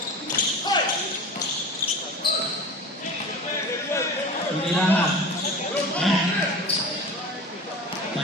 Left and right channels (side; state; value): both; normal; correlation 0.34